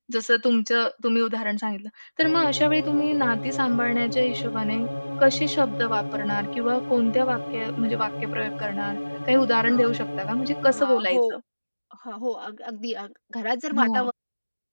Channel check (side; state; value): both; inverted; correlation -1.00